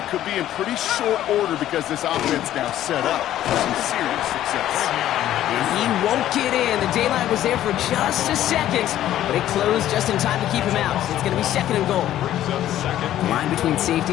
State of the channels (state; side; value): quieter; right; 12.6 dB